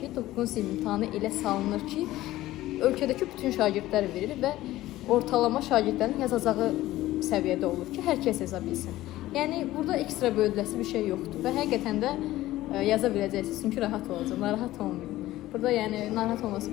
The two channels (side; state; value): right; quieter; 15.9 dB